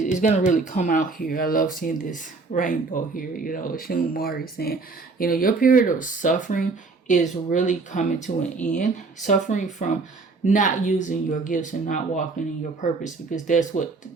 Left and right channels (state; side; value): quieter; left; 4.0 dB